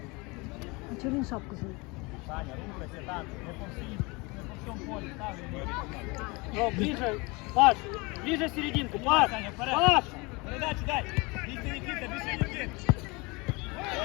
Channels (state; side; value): quieter; right; 26.4 dB